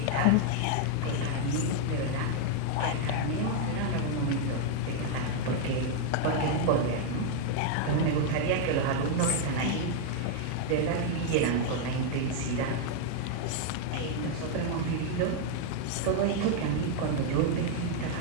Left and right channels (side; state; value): both; different; correlation 0.00